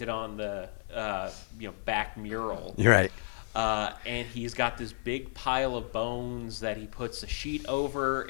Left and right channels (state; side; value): silent; right; digital silence